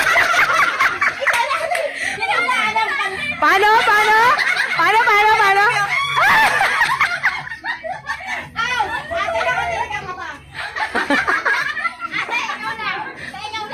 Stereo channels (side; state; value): both; identical; correlation 1.00